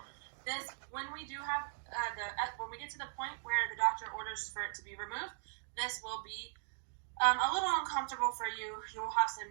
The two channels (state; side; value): silent; left; digital silence